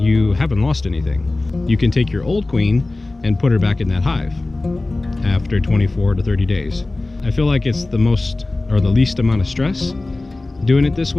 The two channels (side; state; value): right; quieter; 3.0 dB